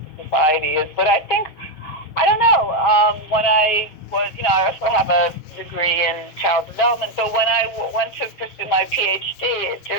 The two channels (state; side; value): late; right; 6.4 ms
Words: society is. But I think, I don't know, when I was, you know, I also have a degree in child development, but when I went to pursue my PhD, it